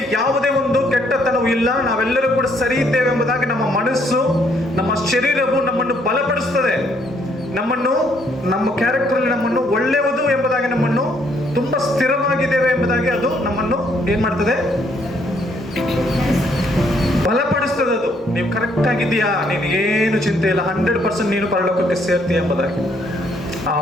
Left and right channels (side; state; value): both; normal; correlation 0.68